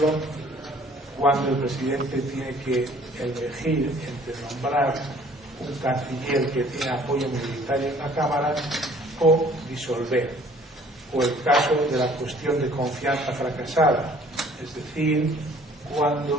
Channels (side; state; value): both; normal; correlation 0.55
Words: cuando el presidente tiene que elegir entre nombrar un canciller que tiene apoyo minoritario en la Cámara o disolver, o el caso de la cuestión de confianza fracasada, es decir,